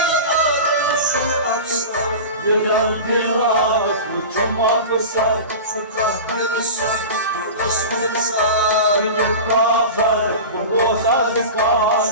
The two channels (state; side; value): inverted; both; correlation -0.31